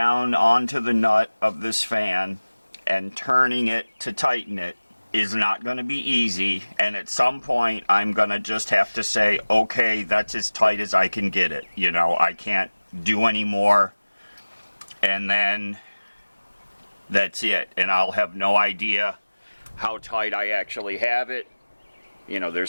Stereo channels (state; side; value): inverted; both; correlation -1.00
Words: onto the nut of this fan and turning it to tighten it is not going to be easy, and at some point I'm going to just have to say, okay, that's as tight as I can get it. You know, I can't do any more, and then that's it, and I'll have no idea how tight I actually have it. You know,